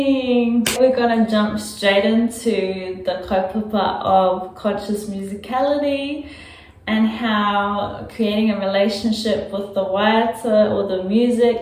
We're gonna jump straight into the kaupapa of conscious musicality and how creating a relationship with the waiata or the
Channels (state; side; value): identical; both; correlation 1.00